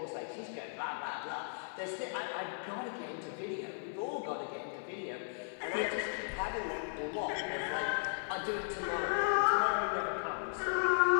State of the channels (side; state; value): right; silent; digital silence